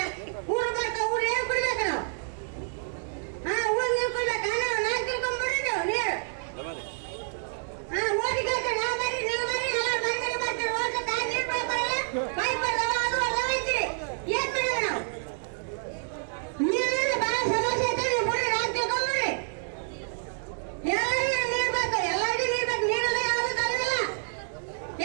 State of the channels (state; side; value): silent; left; digital silence